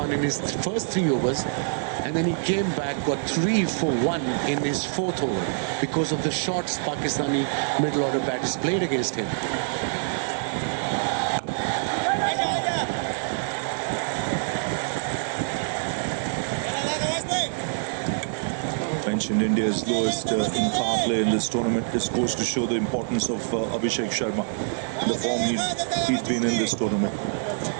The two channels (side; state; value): left; silent; digital silence